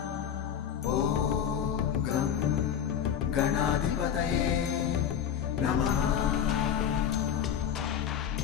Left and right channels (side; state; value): right; quieter; 8.7 dB